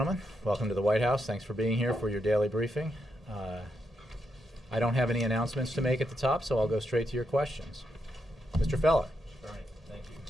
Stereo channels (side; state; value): both; normal; correlation 0.81